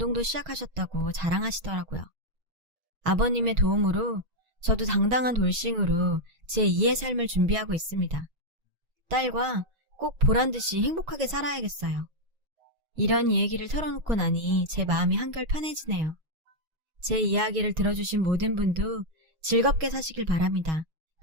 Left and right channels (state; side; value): late; left; 6.3 ms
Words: 시작하셨다고 자랑하시더라고요. 아버님의 도움으로 저도 당당한 돌싱으로 제 2의 삶을 준비하고 있습니다. 딸과 꼭 보란듯이 행복하게 살아야겠어요. 이런 이야기를 털어놓고 나니 제 마음이 한결 편해지네요. 제 이야기를 들어주신 모든 분도 즐겁게 사시길 바랍니다.